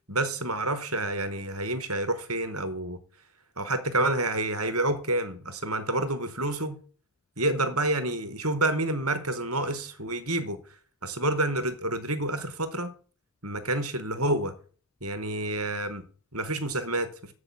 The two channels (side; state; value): both; normal; correlation -0.08